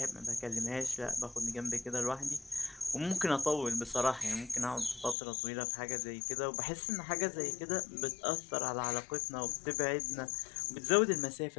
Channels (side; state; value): right; drops out; at 5.2 s